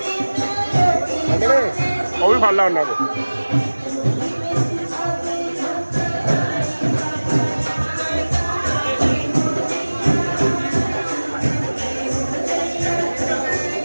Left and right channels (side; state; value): both; inverted; correlation -1.00